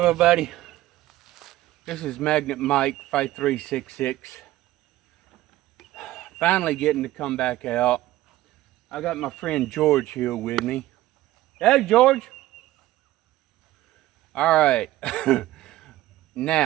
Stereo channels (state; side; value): quieter; left; 15.8 dB